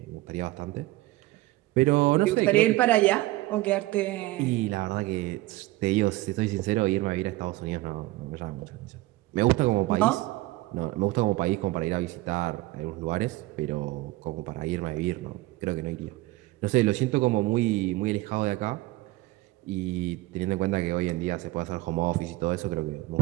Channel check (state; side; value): quieter; left; 18.7 dB